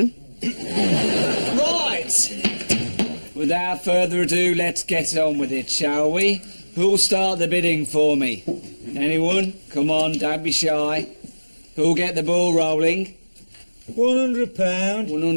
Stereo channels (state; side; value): inverted; both; correlation -1.00